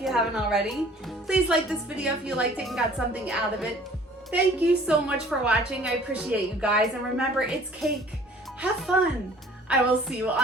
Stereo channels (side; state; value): both; normal; correlation 0.51